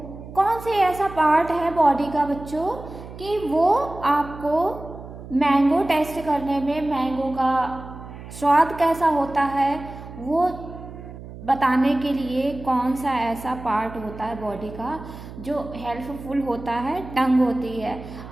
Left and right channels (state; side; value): noise; right; hum, 14 dB below the sound